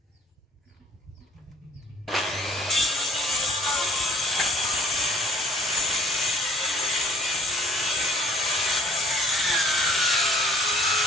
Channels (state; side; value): normal; both; correlation 0.59